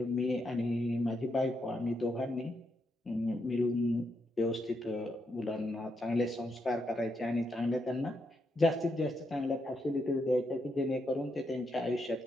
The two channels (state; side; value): normal; both; correlation 0.81